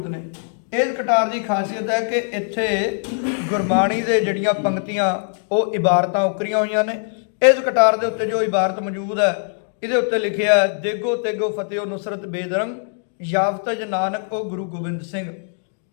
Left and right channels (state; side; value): silent; right; 64 dB below the other